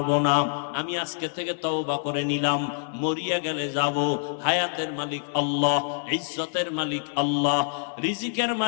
না? আমি আজকে থেকে তওবা করে নিলাম, মরিয়া গেলে যাব। হায়াতের মালিক আল্লাহ, ইজ্জতের মালিক আল্লাহ, রিজিকের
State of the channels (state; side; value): silent; right; digital silence